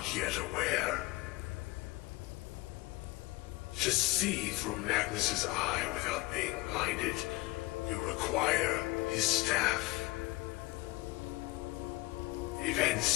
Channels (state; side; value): quieter; right; 21.9 dB